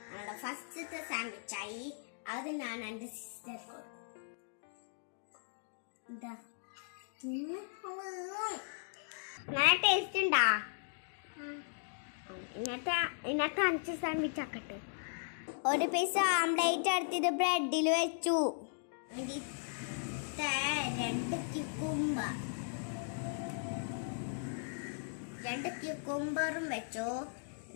നമ്മുടെ ഫസ്റ്റത്തെ സാൻഡ്വിച്ചായി. അത് ഞാൻ എൻ്റെ സിസ്റ്റർ കൊടുക്കും. ഇതാ നല്ല ടേസ്റ്റ് ഉണ്ടാ. ഇന്നത്തെ 5 സാൻഡ്വിച്ച് ആക്കട്ടെ. ഒരു പീസ് ഓംലേറ്റ് എടുത്തിട്ട് ബ്രെഡിൽ വെച്ചു. 2 ക്യൂക്കുംബറും വെച്ചു,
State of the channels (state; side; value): silent; right; digital silence